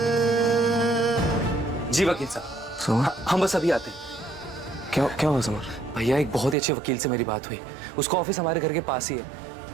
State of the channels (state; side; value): drops out; left; at 6.6 s